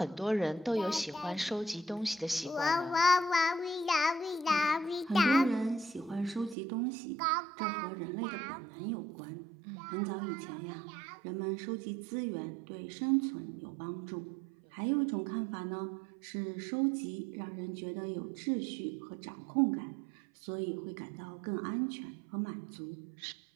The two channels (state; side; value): drops out; left; at 6.6 s